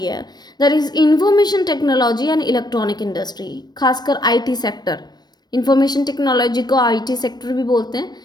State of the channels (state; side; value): late; right; 0.20 ms